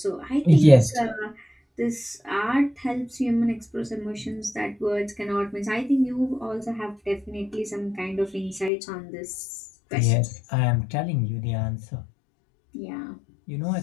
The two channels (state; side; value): drops out; right; at 8.7 s